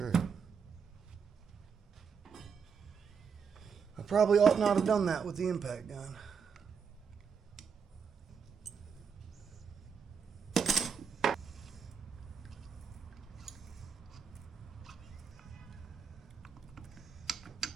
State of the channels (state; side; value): quieter; left; 6.3 dB